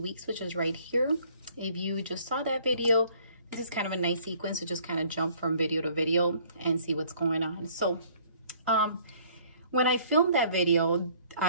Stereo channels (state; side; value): inverted; both; correlation -0.58